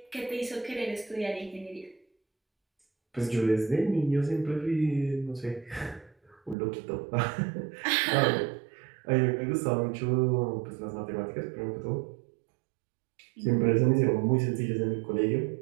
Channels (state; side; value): drops out; left; at 6.6 s